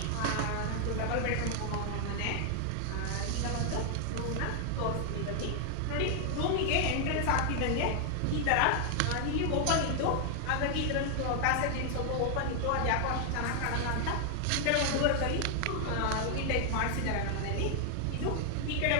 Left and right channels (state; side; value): different; both; correlation 0.00